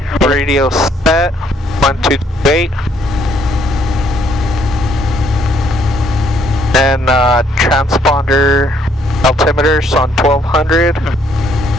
radio set. 1, 2, 8. And transponder altimeters on 1200.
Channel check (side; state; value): both; normal; correlation 0.67